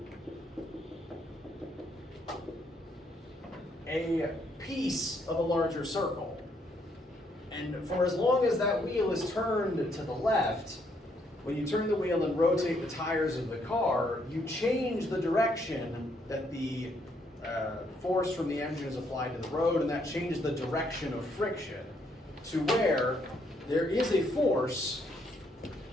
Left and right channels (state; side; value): normal; both; correlation 0.72